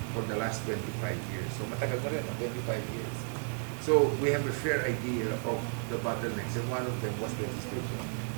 for the last 25 years. So matagal na rin, 25 years. So we have a fair idea of the bottlenecks, and one of them was legislation.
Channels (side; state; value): left; silent; 56 dB below the other